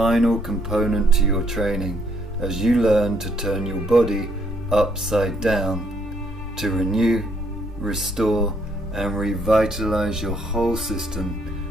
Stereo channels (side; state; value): both; normal; correlation 0.70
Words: component to your training as you learn to turn your body upside down to renew, restore, and revitalize your whole